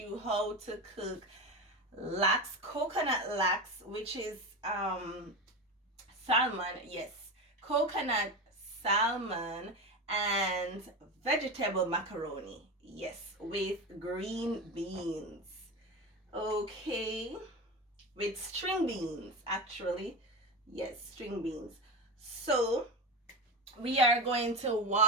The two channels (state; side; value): normal; both; correlation 0.22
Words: how to cook coconut lax, which is salmon. Yes, coconut salmon and vegetable macaroni. Yes, with green beans. Okay, with string beans, actually. Yes, string beans. So we are going to